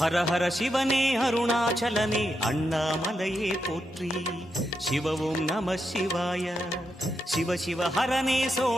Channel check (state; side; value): normal; both; correlation 0.84